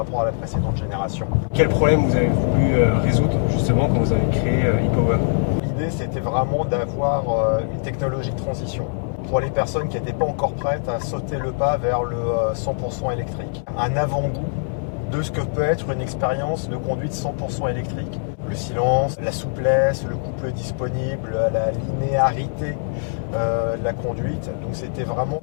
à la précédente génération. Quel problème vous avez voulu résoudre justement quand vous avez créé e-Power? L'idée, c'était vraiment d'avoir une technologie de transition pour les personnes qui n'étaient pas encore prêtes à sauter le pas vers le 100% électrique. Un avant-goût de ce que peut être une expérience de conduite 100% électrique. Le silence, la souplesse, le couple disponible, la linéarité de la conduite. Donc c'était vraiment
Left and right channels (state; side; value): silent; right; digital silence